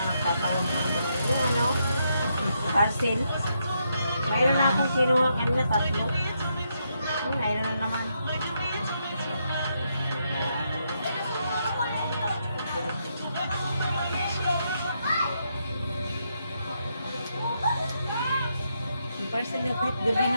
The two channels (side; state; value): both; inverted; correlation -0.79